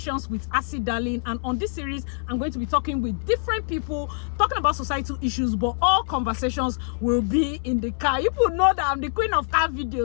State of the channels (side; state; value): right; silent; 61 dB below the other